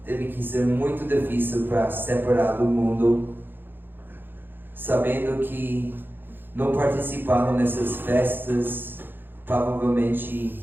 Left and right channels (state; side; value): late; left; 0.097 ms